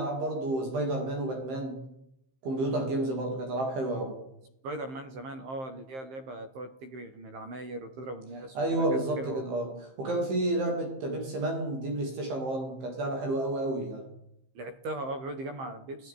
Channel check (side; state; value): left; late; 15 ms